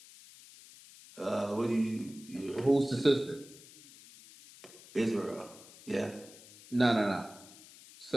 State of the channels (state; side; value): noise; left; hiss, 20 dB below the sound